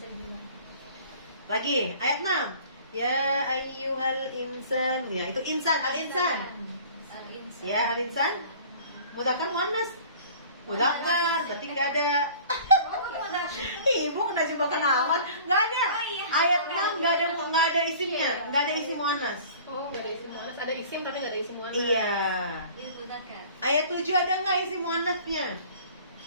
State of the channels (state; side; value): inverted; both; correlation -0.46